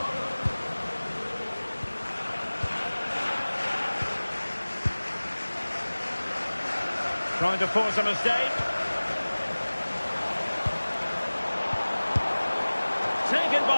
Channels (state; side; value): inverted; both; correlation -1.00